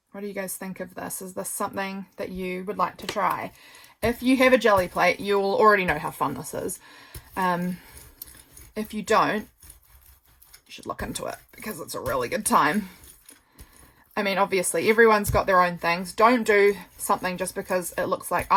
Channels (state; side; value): identical; both; correlation 1.00